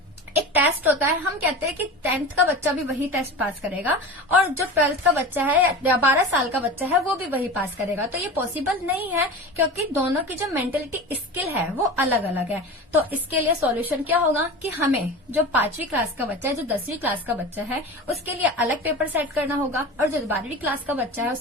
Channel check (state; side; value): normal; both; correlation 0.31